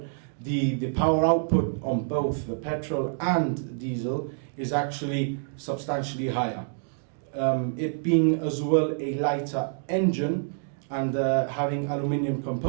the power output on both the petrol and diesel is actually substantially higher. It being as well a lighter engine and having aluminium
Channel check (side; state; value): left; silent; digital silence